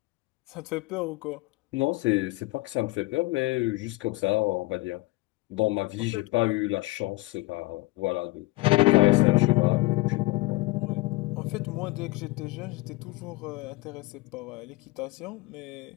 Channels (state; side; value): quieter; right; 22.3 dB